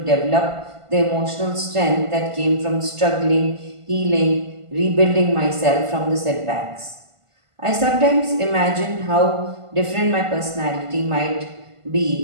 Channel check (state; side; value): late; left; 1.5 ms